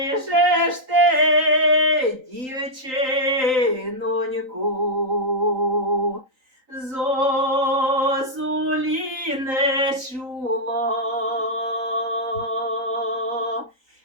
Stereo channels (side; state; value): left; late; 3.9 ms